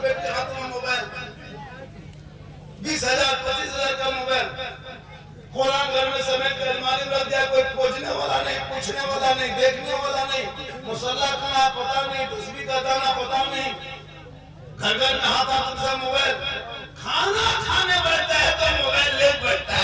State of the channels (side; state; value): both; identical; correlation 1.00